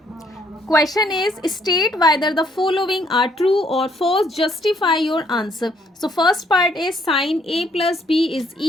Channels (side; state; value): both; normal; correlation 0.67